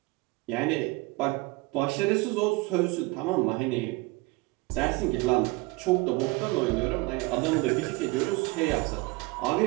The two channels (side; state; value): left; quieter; 23.3 dB